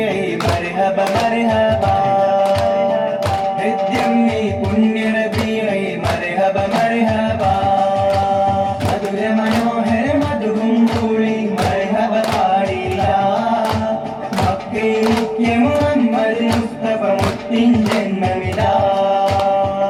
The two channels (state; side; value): identical; both; correlation 1.00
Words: മർഹബ മർഹബ കൃത്യം നീ പുണ്യറബിയെ മർഹബ മർഹബ മധുര മനോഹര മധുവും കൂടി മർഹബ പാടിയ മക്കേ മുഖ്യ മുഹമ്മദ് മുസ്തഫ മുത്തിൻ ജന്മമിതാ